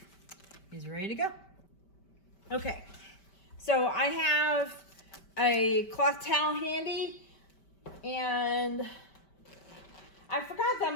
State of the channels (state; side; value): late; right; 5.1 ms